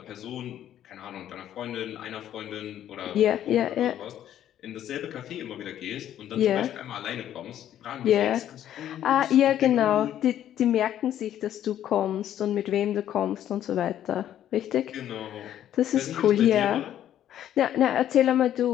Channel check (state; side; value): quieter; right; 11.2 dB